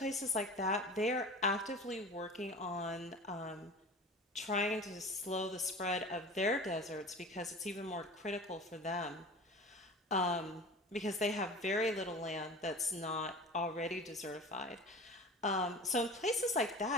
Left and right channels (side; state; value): both; normal; correlation 0.37